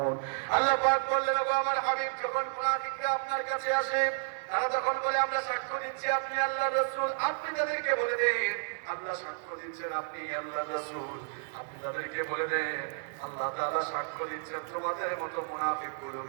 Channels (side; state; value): left; silent; digital silence